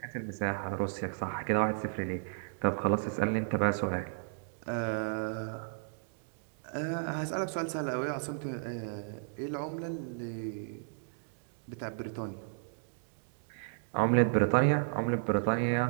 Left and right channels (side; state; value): left; silent; digital silence